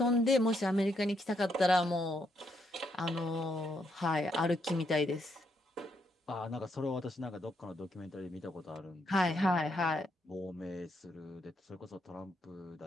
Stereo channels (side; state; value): both; normal; correlation 0.77